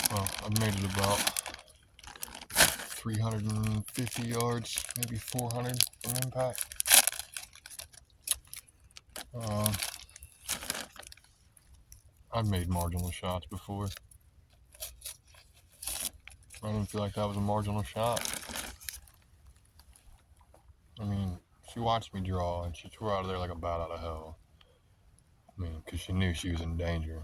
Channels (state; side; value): identical; both; correlation 1.00